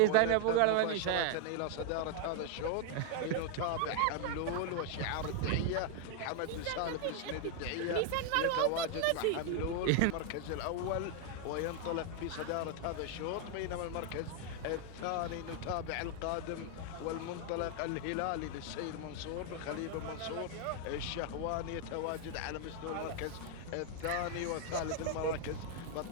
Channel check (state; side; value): different; both; correlation 0.00